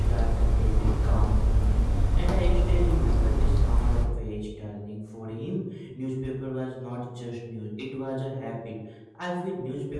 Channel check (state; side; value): identical; both; correlation 1.00